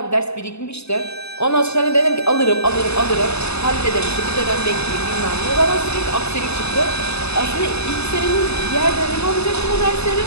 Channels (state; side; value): late; right; 0.80 ms